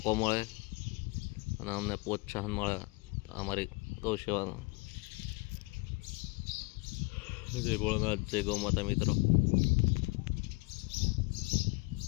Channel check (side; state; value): right; quieter; 26.1 dB